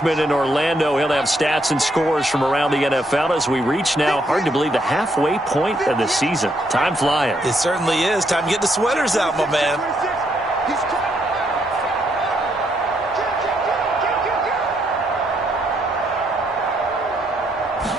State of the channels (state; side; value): normal; both; correlation 0.74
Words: in Orlando. He'll have stats and scores from around the NFL as we reach now, hard to believe, the halfway point of the season. Time flying. It certainly is. Time to get the sweaters out, my man.